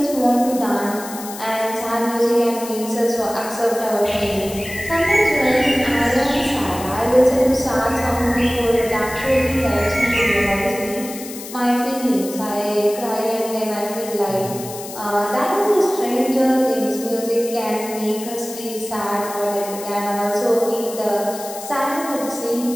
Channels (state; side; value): noise; left; hiss, 12 dB below the sound